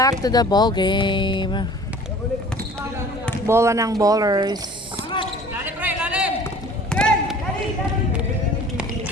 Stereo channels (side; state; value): both; normal; correlation 0.47